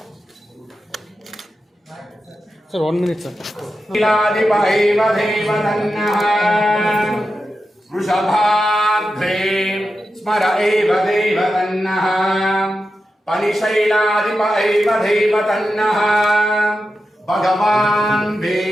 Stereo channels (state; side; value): normal; both; correlation 0.90